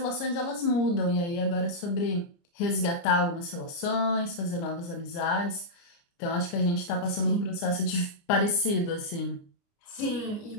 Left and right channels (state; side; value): late; right; 29 ms